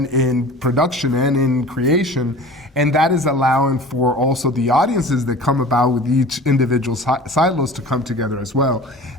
in production and in creation. And that is allowing for also the audiences that come about with each individual silos to come together as well.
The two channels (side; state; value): both; normal; correlation 0.40